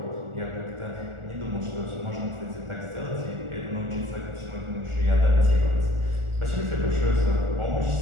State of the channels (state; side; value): late; left; 1.4 ms